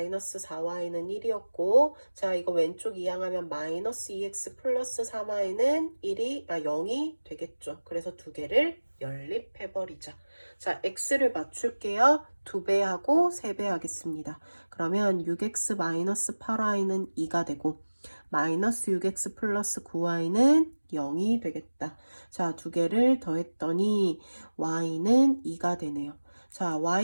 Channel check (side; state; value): both; inverted; correlation -1.00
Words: 1이었고, 자, 이거 왼쪽 이항하면 -2x 플러스 3y는 0이 되겠죠. 그래서 두 개를 연립해버리자. 자, x를 맞출게요. 2배 하고 3배 하겠습니다. 그러면 6x-8y는 2가 되고, -6x 플러스 9y는 0이 되겠다. 자, 두 개를 더했더니 y는 2가 되네요. 자,